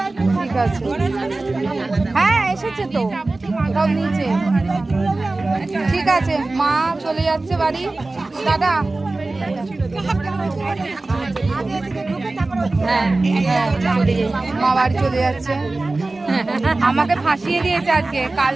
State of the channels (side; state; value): left; quieter; 3.2 dB